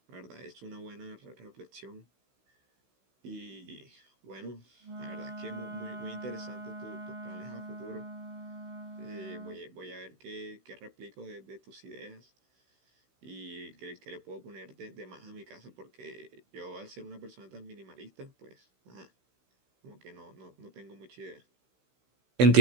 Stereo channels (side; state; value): left; late; 16 ms